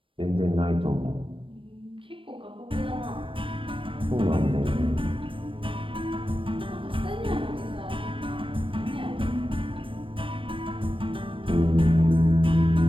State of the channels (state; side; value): late; left; 0.25 ms